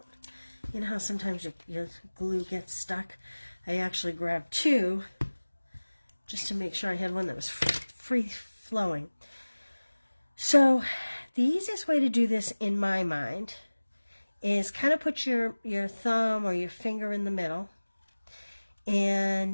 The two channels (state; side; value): inverted; both; correlation -1.00